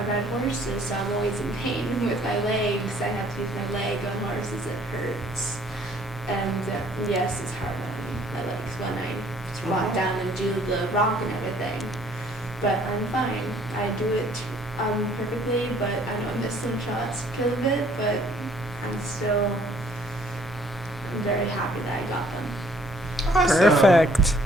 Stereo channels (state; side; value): normal; both; correlation 0.60